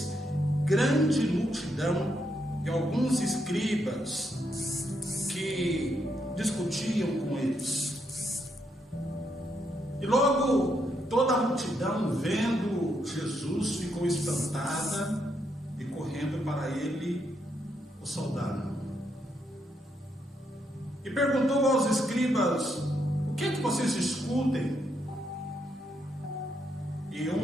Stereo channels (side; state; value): both; normal; correlation 0.78